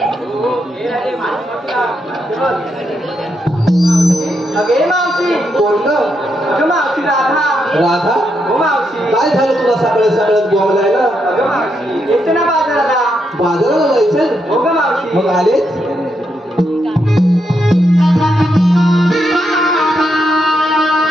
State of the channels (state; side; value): normal; both; correlation 0.80